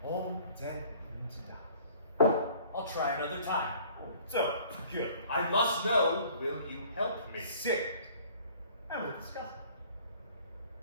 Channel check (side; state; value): both; inverted; correlation -0.53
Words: All dead into dust. I'll try another time. So, good. I must know, will you help me? Sit. And we'll discuss